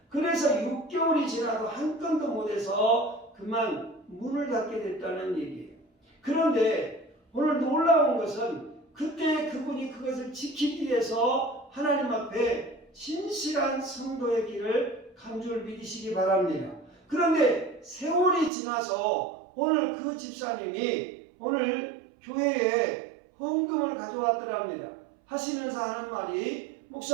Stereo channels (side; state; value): left; drops out; at 18.5 s